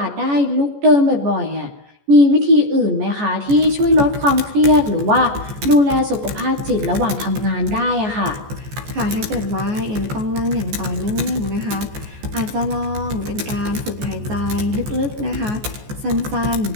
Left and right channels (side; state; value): left; late; 14 ms